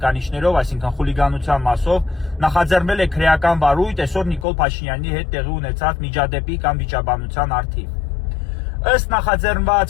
այսինքն խուլիգանության մասով, նախաձեռնել է քրեական վարույթ այսօր Նիկոլ Փաշինյանի հետ տեղի ունեցած միջադեպի կամ վիճաբանության առթիվ։ Ըստ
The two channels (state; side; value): drops out; right; at 4.5 s